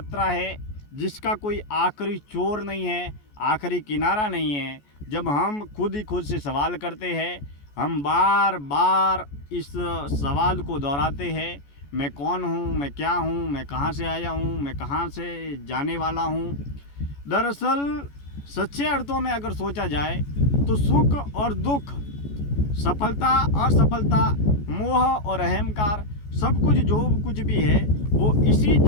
है जिसका कोई आखिरी छोर नहीं है, आखिरी किनारा नहीं है। जब हम खुद ही खुद से सवाल करते हैं, हम बार बार इस सवाल को दोहराते हैं, मैं कौन हूँ, मैं क्या हूँ, मैं कहाँ से आया हूँ, मैं कहाँ से जाने वाला हूँ। दरअसल सच्चे अर्थों में अगर सोचा जाए तो सुख और दुख, सफलता असफलता, मोह और अहंकार, सब कुछ जो कुछ भी है वो इसी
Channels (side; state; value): right; late; 14 ms